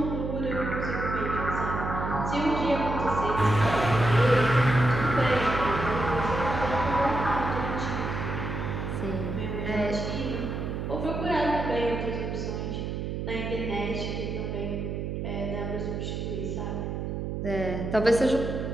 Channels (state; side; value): noise; right; hum, 3 dB below the sound